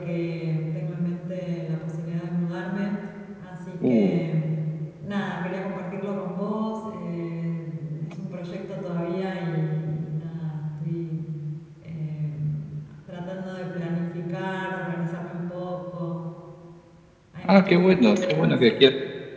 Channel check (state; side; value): identical; both; correlation 1.00